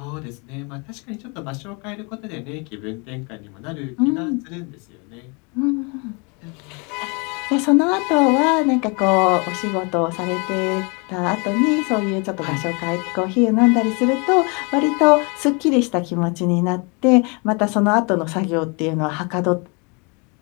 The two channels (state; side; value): quieter; right; 32.0 dB